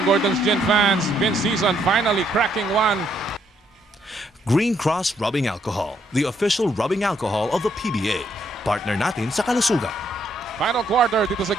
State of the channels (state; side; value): normal; both; correlation 0.72